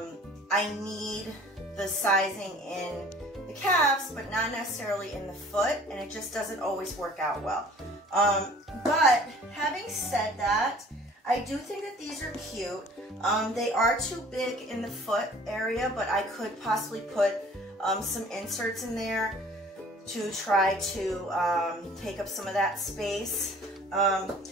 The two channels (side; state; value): both; normal; correlation 0.50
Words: need the sizing in the calves but not necessarily in the foot, and it just doesn't always work out well. But having said that, I do think that these are cute. They are too big in the foot area, but I could possibly put some inserts in there to try to take up some of that space.